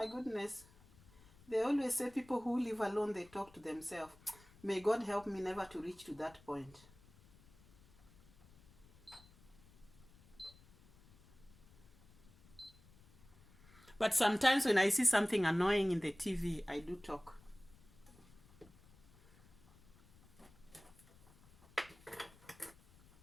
goodness. They always say people who live alone, they talk to themselves. May God help me never to reach to that point. But sometimes when I see something annoying in the TV, I do talk.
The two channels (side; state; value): left; noise; rumble, 25 dB below the sound